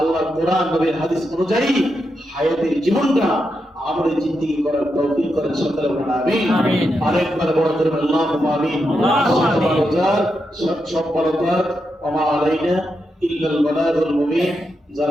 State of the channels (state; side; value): normal; both; correlation 0.85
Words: কোরআন নবীর হাদিস অনুযায়ী হায়াতের জীবনটা আমাদের জিন্দেগি করার তৌফিক করেন সকলে বলেন আমিন। আরেকবার বড় করে আল্লাহুম্মা আমিন। সব ভালোতার ওয়া মা আলাইনা ইল্লাল বালাগুল মুবিন।